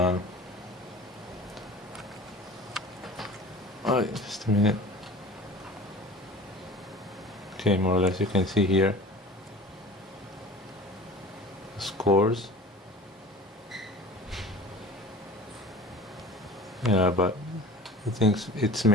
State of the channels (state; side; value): normal; both; correlation 0.40